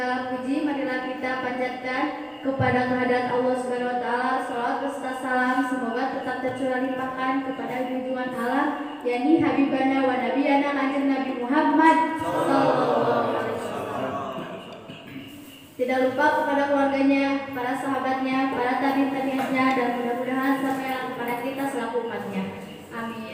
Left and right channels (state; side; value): identical; both; correlation 1.00